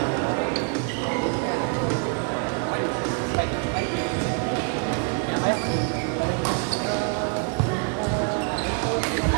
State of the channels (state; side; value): quieter; left; 38.5 dB